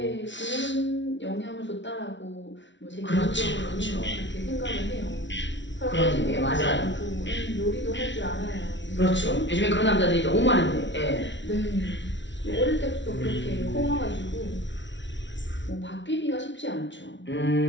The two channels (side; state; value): right; late; 0.54 ms